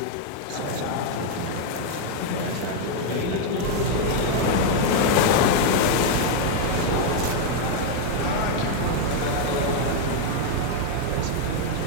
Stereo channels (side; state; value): both; different; correlation 0.00